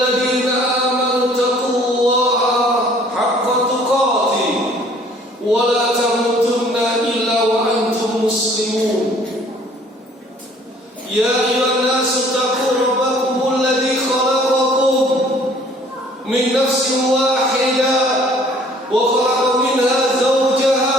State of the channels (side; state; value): both; normal; correlation 0.56